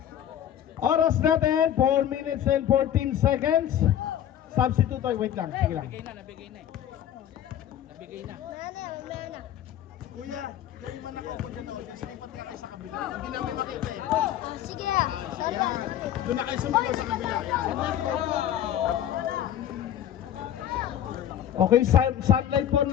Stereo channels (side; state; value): right; quieter; 10.7 dB